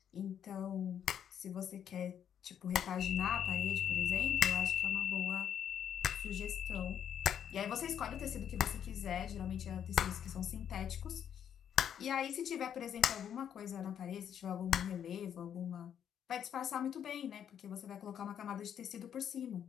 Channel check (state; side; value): quieter; right; 9.0 dB